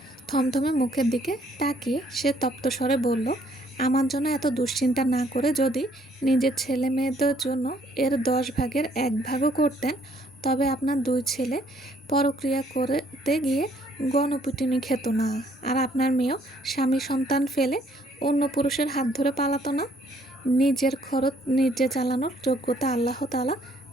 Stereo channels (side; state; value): both; normal; correlation 0.65